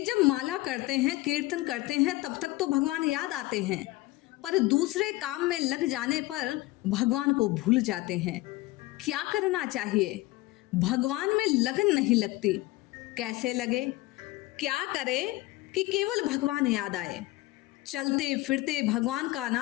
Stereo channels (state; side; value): quieter; right; 19.4 dB